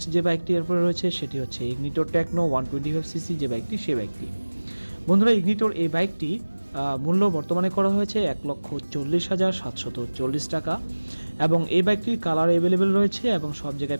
যে বাইকটি এরপরে রয়েছে সেটি হচ্ছে ইগনিটর টেকনো 125cc যে বাইকটি, সেই বাইকটি। বন্ধুরা, ইগনিটর এই বাইকটি মূল্য বর্তমানে করা হয়েছে 1,40,740 টাকা, এবং এই বাইকটির কালার অ্যাভেলেবেল রয়েছে এবং সব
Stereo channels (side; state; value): both; inverted; correlation -1.00